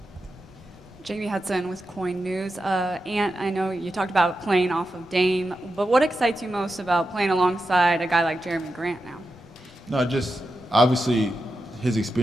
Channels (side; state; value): both; normal; correlation 0.89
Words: Jamie Hudson with Coin News. Ant, I know you talked about playing off of Dame, but what excites you most about playing alongside a guy like Jeremy Grant now? No, just obviously his